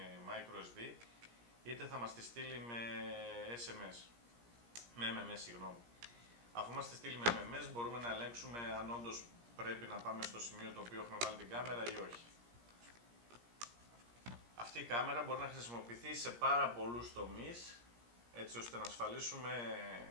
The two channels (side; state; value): left; late; 17 ms